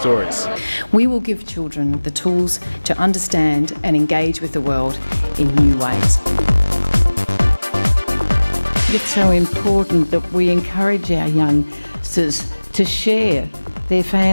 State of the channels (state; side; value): inverted; both; correlation -1.00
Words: We will give children the tools to understand and engage with the world in new ways. It's so important that we encourage our youngsters to share their